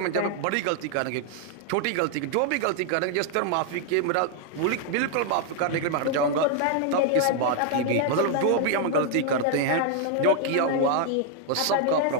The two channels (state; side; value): different; both; correlation 0.00